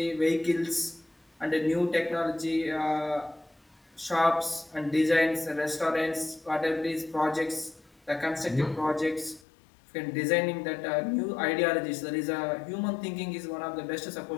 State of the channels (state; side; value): drops out; right; at 9.4 s